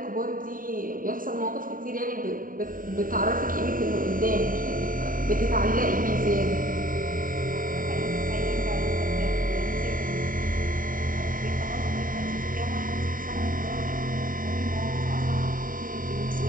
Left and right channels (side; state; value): left; late; 0.40 ms